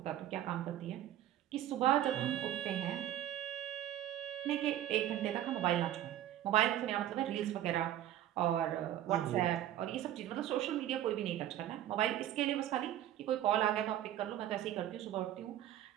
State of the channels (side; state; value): left; quieter; 12.2 dB